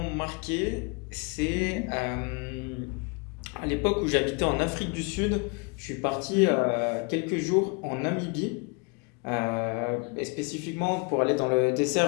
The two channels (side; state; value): right; quieter; 32.5 dB